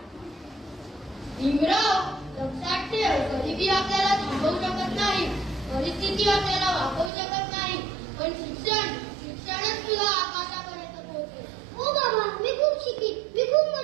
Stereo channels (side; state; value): left; drops out; at 7.1 s